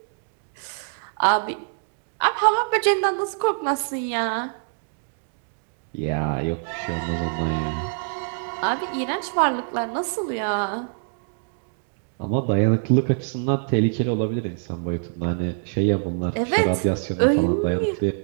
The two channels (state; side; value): silent; left; digital silence